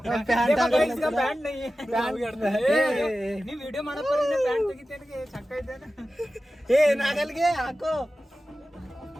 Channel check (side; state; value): both; normal; correlation 0.94